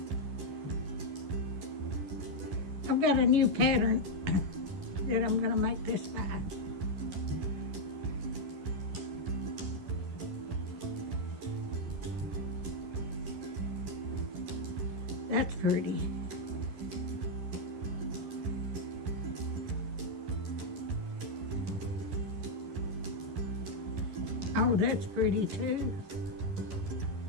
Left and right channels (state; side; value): late; left; 11 ms